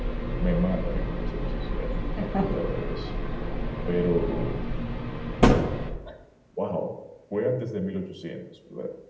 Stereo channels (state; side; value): identical; both; correlation 1.00